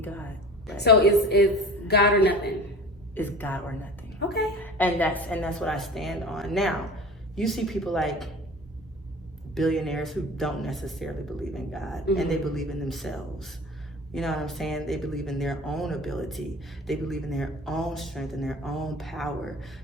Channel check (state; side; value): normal; both; correlation 0.38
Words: God. Right? So it's God or nothing. It's God or nothing. Okay. And that's what I stand on. Now, you see people like billionaires who don't necessarily believe in God, and they believe in themselves. You know what I'm saying? They believe in their own ability. They believe in their own strength and their own power